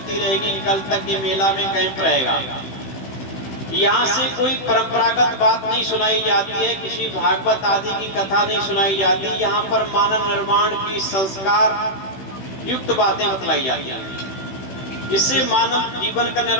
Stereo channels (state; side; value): late; right; 16 ms